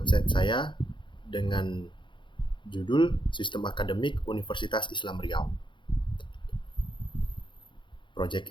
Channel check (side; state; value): right; late; 0.23 ms